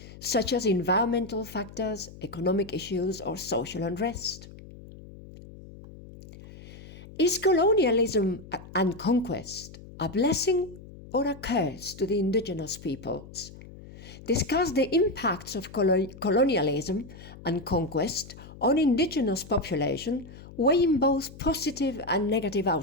such as environmental factors, economic issues, or social unrest. Is colonialism and conquest a blessing or a curse to the indigenous peoples? Discuss the impacts of colonialism and conquest on indigenous population, weighing both positive and negative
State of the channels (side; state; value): left; noise; hum, 17 dB below the sound